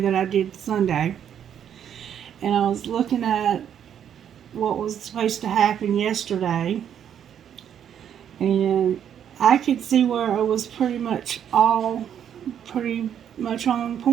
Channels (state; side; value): quieter; left; 9.2 dB